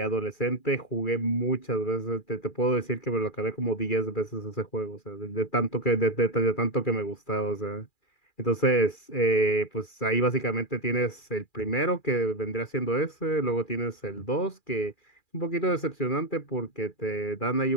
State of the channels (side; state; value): right; late; 2.4 ms